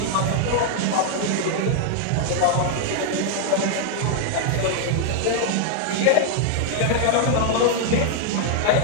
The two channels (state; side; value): different; both; correlation 0.00